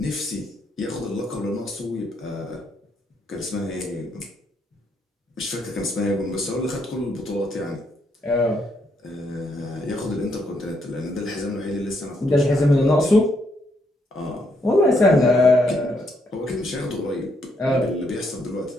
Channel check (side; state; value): both; normal; correlation 0.75